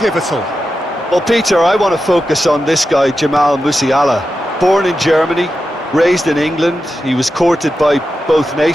Well, Peter, I want to focus on this guy, Jamal Musiala. Born in Germany, raised in England. He was courted by both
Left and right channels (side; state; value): both; normal; correlation 0.90